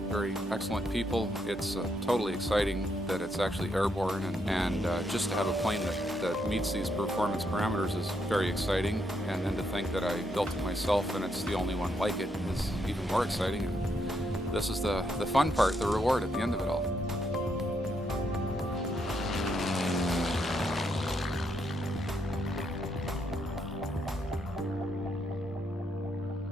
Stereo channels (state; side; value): normal; both; correlation 0.77